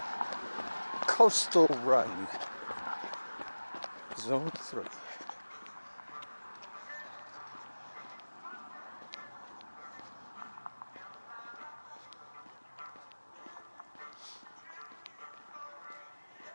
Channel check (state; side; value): inverted; both; correlation -1.00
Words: coastal run, Zone 3.